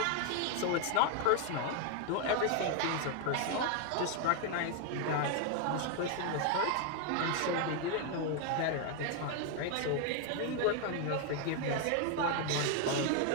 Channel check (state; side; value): different; both; correlation 0.01